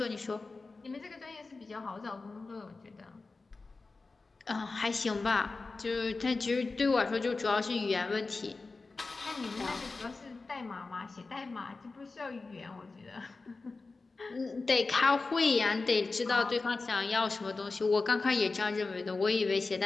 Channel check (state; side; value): quieter; right; 3.8 dB